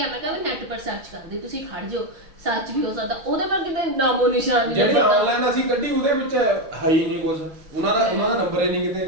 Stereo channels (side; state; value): left; late; 6.9 ms